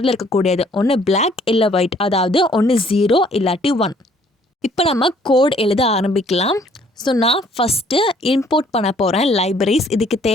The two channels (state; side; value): normal; both; correlation 0.61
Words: இருக்கக்கூடியது, ஒன்று பிளாக் இல்லை ஒயிட், அதாவது ஒன்று 0 இல்லாட்டி 1. இப்போ நம்ம கோட் எழுத ஆரம்பிக்கலாம். ஸோ நான் ஃபஸ்ட்டு இம்போர்ட் பண்ண போகிறேன் லைப்ரரிஸ். இதுக்கு